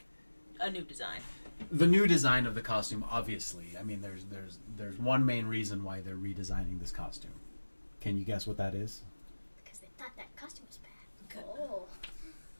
a new design? The new design of the costume, obviously. I mean, there's one main reason why they're redesigning this costume. Can you guess what that is? Because they thought that costume was bad. Oh.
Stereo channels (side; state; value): both; inverted; correlation -1.00